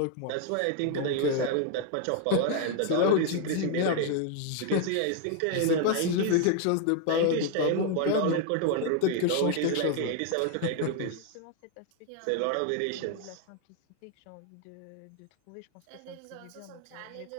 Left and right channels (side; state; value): both; different; correlation 0.01